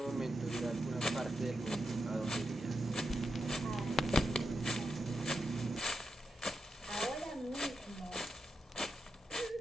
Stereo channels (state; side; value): normal; both; correlation 0.86